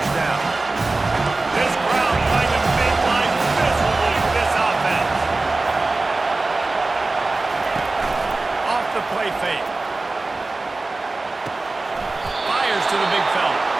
down. This crowd trying to make life miserable for this offense. Off the play fake. Fires to the big fella.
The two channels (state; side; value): quieter; left; 3.3 dB